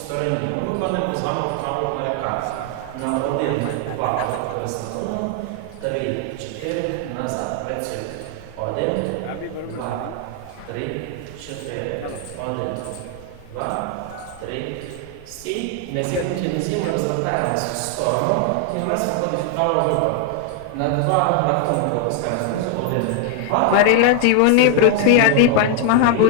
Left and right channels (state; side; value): different; both; correlation 0.00